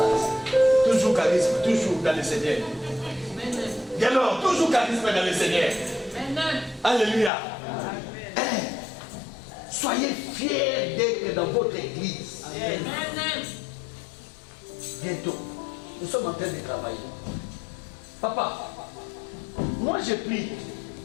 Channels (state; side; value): drops out; right; at 7.3 s